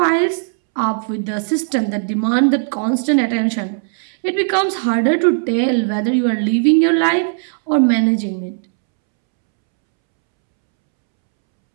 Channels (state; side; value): silent; left; 68 dB below the other